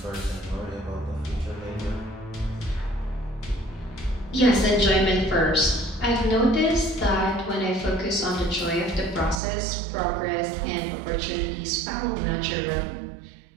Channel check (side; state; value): left; drops out; at 9.4 s